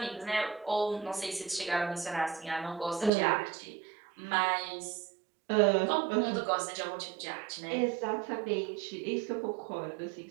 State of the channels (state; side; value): drops out; left; at 3.1 s